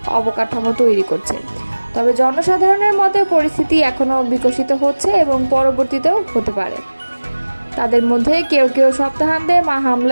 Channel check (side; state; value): both; inverted; correlation -1.00